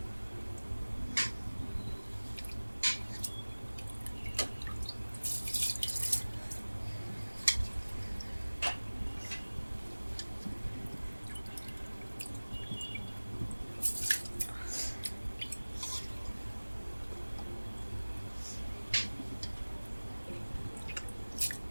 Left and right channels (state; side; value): inverted; both; correlation -1.00